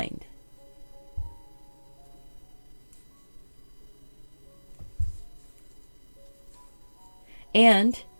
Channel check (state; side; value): inverted; both; correlation -1.00